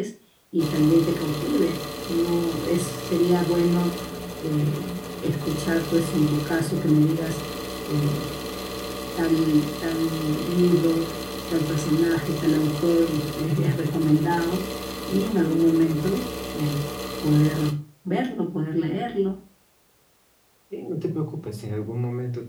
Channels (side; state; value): both; identical; correlation 1.00